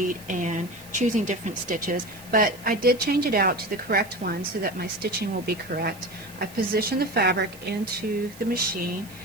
and choosing different stitches. But I did change it out to the correct one so that my stitching will be correct. I've positioned the fabric into the machine,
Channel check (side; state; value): right; noise; hiss, 20 dB below the sound